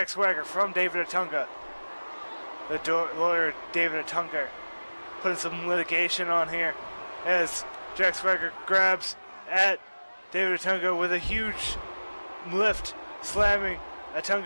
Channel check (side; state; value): both; inverted; correlation -1.00